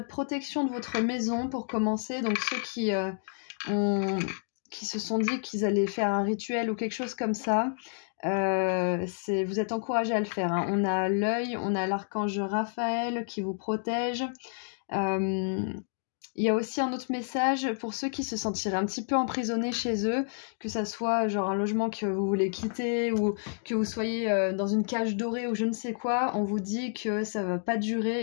protection de votre maison pour commencer. Donc ceux qui se sont dit qu'ils allaient faire un rituel ou quelque chose comme ça, vous êtes encouragés à le faire. Hein. On a l'œil, on a l'archange Raphaël qui vous protège. Il y a aussi un autre message pour ceux qui se sentiraient un petit peu emprisonnés chez eux, que ça soit genre un logement que vous voulez quitter ou que vous soyez dans une cage dorée ou je ne sais quoi. On vous dit que ça va pas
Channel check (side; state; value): right; silent; digital silence